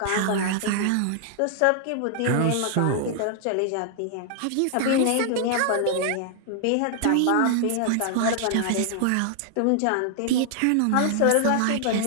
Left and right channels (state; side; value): different; both; correlation 0.00